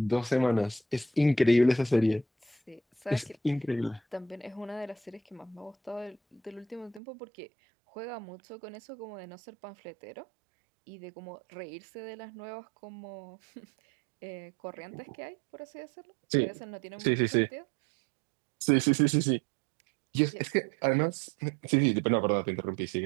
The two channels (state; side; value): drops out; left; at 7.0 s